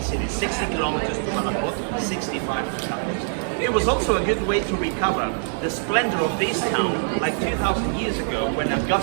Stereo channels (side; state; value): left; silent; digital silence